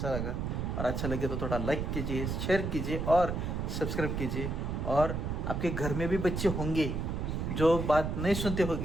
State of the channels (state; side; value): noise; right; rumble, 2 dB below the sound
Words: लगा, और अच्छा लगे तो थोड़ा लाइक कीजिए, शेयर कीजिए और सब्सक्राइब कीजिए. और आपके घर में भी बच्चे होंगे जो बात नहीं सुनते